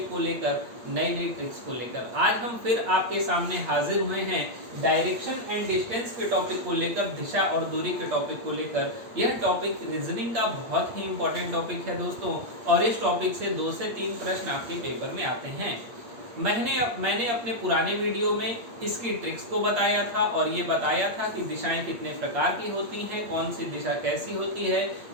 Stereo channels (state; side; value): late; left; 8.5 ms